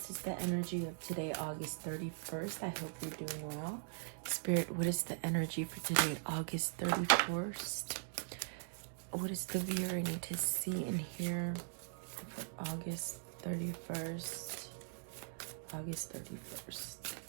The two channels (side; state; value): left; silent; digital silence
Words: is the energy of today, August 31st. I hope you're doing well. Spirit, what is the energy for today, August 31st? What is the viewer I need to see and hear for August 31st? August